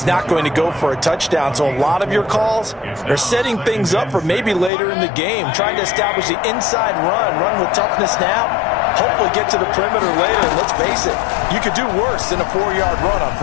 not going to go for a touchdown, so a lot of your calls are setting things up for maybe later in the game, trying to establish the inside run with toughness now, hopefully get to the perimeter later, and let's face it, you could do worse than a 4-yard run on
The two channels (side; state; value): right; drops out; at 4.7 s